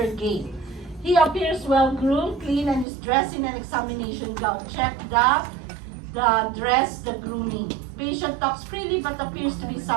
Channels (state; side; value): drops out; left; at 2.9 s